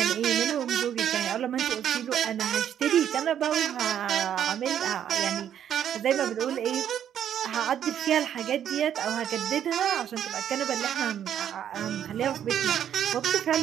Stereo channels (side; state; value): left; quieter; 9.8 dB